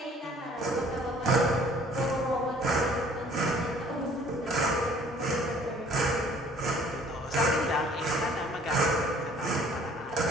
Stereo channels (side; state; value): both; normal; correlation 0.55